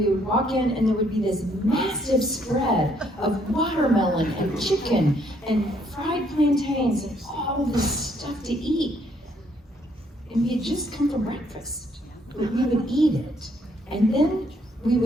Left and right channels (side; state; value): both; normal; correlation 0.68